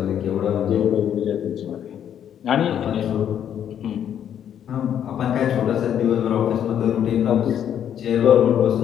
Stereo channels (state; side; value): quieter; right; 9.5 dB